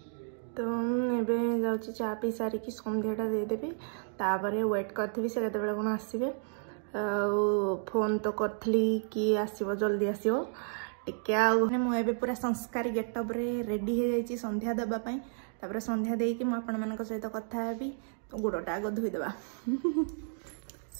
तो एबे जाऊँगी चा पी सारिकी संध्याटा देदेवी तापर वेट करी से केतबेले कौन आसबे। फोन तो करी कि आसो जल्दी आसो टे मुझे पूरा संस्कारी गेटअप रे रेडी हो जाइए संध्या देवाई। तापर संध्या देकी मुझे सहित कथा हेबी। तो गोड़टा आग धोईदेवा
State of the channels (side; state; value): left; silent; digital silence